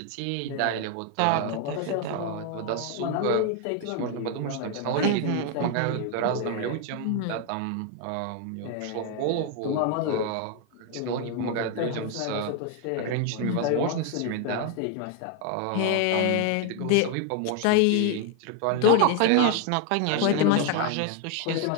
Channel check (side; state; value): both; different; correlation 0.01